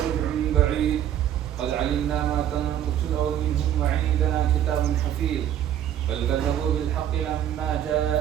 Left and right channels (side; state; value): left; quieter; 10.7 dB